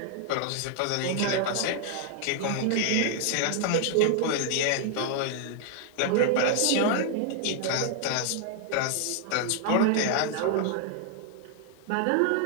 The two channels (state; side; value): different; both; correlation 0.00